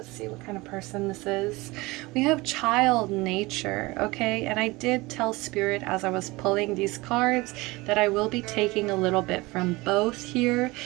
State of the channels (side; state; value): left; quieter; 22.2 dB